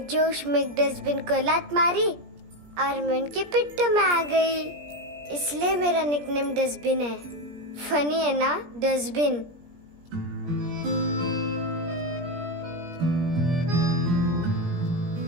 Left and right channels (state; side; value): late; left; 17 ms